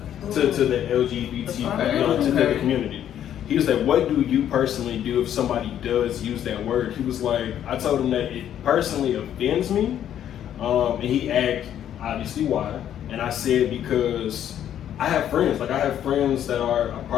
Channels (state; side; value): quieter; right; 10.4 dB